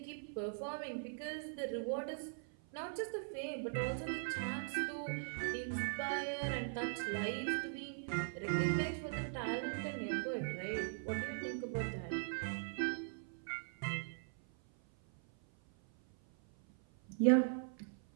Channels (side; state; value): left; silent; 51 dB below the other